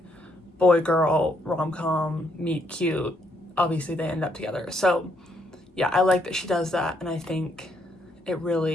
boy girl rom-com meet cute. Obviously they end up together. So yeah, I like that she does that, and I think it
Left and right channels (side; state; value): both; normal; correlation 0.73